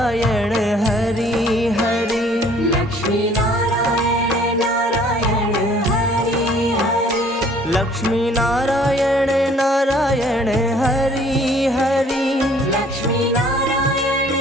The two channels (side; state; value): both; normal; correlation 0.57